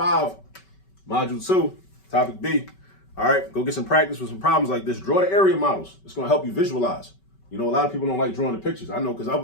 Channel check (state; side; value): late; right; 5.2 ms